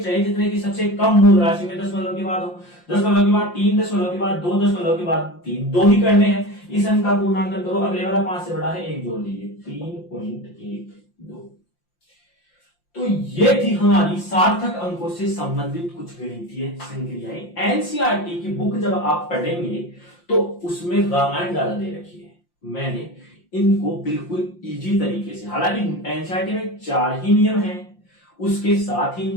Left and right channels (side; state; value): right; late; 5.7 ms